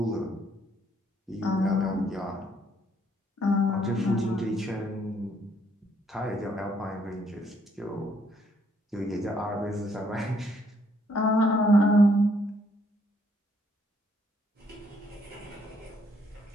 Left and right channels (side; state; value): both; normal; correlation 0.69